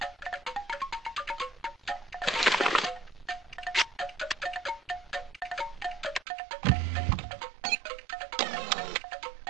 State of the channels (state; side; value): drops out; left; at 6.2 s